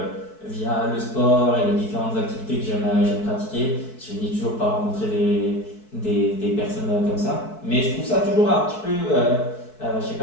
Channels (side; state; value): right; late; 4.6 ms